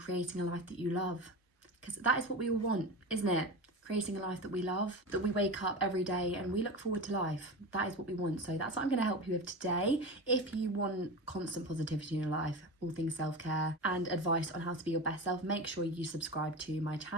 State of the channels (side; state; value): both; normal; correlation 0.26